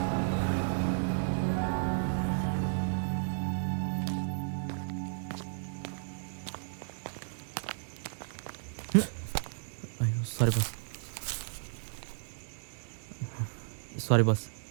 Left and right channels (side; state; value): left; silent; digital silence